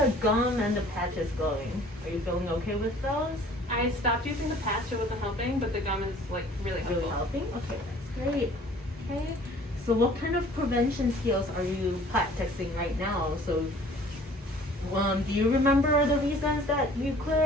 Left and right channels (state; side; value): normal; both; correlation 0.52